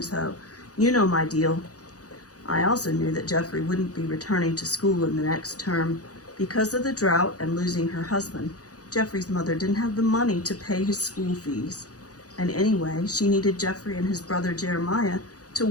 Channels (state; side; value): late; right; 0.67 ms